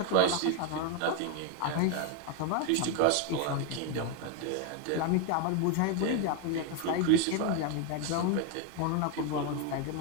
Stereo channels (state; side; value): different; both; correlation 0.01